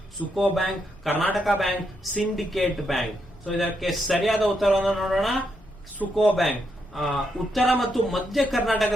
Suko bank, Karnataka bank, syndicate bank. So ಇದಕ್ಕೆ ಸರಿಯಾದ ಉತ್ತರವನ್ನು ನೋಡೋಣ. ಸುಕೋ ಬ್ಯಾಂಕ್. ಉತ್ತರ ಮತ್ತು ಮಧ್ಯ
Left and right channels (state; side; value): normal; both; correlation 0.80